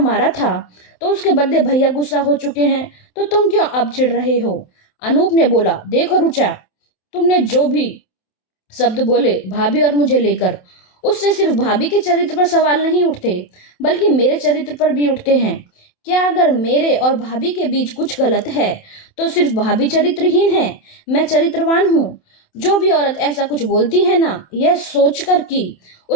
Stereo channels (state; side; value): late; right; 27 ms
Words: था तो उसके बदले भैया गुस्सा हो चुके हैं, तो तुम क्यों अब चिढ़ रहे हो? अनूप ने बोला, देखो रुचा, तुमने जो भी शब्द बोले भाभी और मुझे लेकर, उससे सिर्फ भाभी के चरित्र पर सवाल नहीं उठते बल्कि मेरे चरित्र पर भी उठते हैं। क्या अगर मेरे और भाभी के बीच कुछ गलत है तो सिर्फ भाभी चरित्रहीन है, मैं चरित्रवान हूँ? जो भी औरत ऐसा कुछ बोलती है ना, यह सोचकर कि